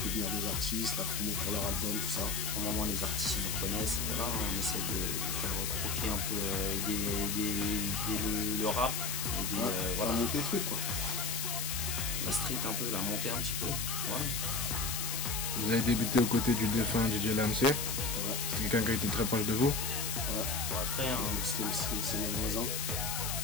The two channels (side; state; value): left; noise; hiss, 1 dB below the sound